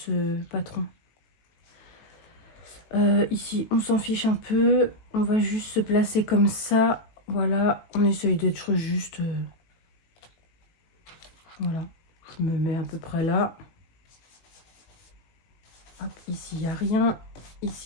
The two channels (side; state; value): right; late; 18 ms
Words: patron. Ici, on s'en fiche un peu. On va juste se placer comme ça. Voilà, on essaye d'être juste... Voilà, je me mets à peu près là. Hop, ici, il n'y a rien.